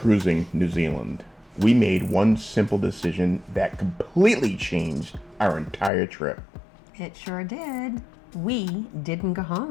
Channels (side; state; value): right; drops out; at 5.9 s